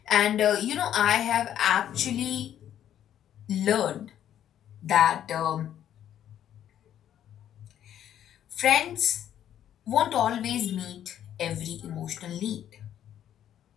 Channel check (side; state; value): right; quieter; 10.7 dB